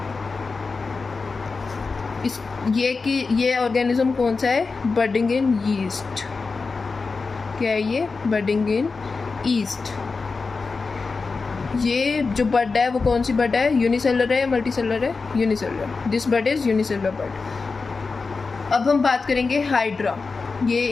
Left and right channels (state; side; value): quieter; right; 4.3 dB